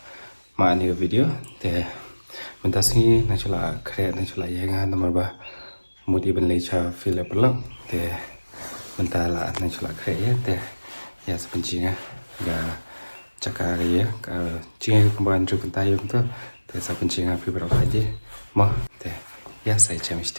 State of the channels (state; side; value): inverted; both; correlation -1.00